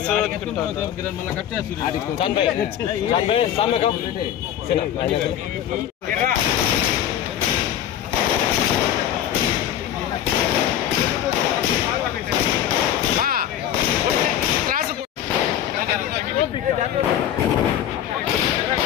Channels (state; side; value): quieter; right; 10.8 dB